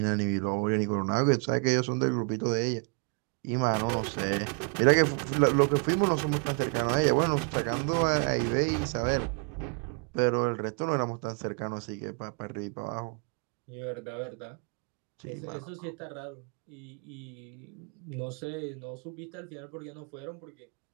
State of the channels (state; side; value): quieter; left; 39.6 dB